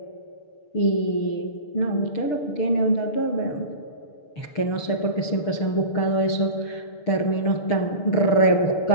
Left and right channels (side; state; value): right; late; 6.7 ms